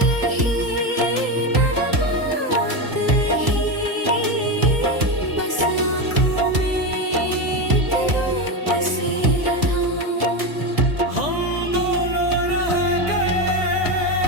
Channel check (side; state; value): left; late; 2.0 ms